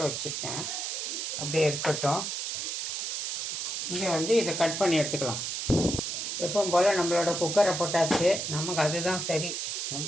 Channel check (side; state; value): right; noise; hiss, 3 dB below the sound